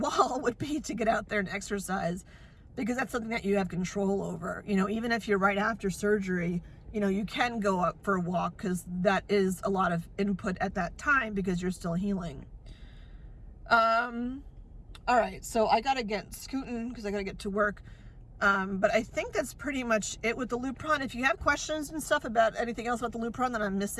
would be to get out there and exercise, because that's something that you have control over. You know, even if you're right after surgery, you know, you can go up for a walk because that is a lot of input at that time because you're still healing. All right, so I gotta get scooting because I gotta get to work. But I think that's pretty much it with the Lupron. If you have questions and stuff about anything else about the Lupron that I'm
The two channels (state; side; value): identical; both; correlation 1.00